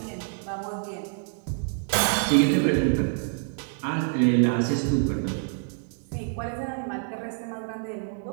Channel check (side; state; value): left; silent; 60 dB below the other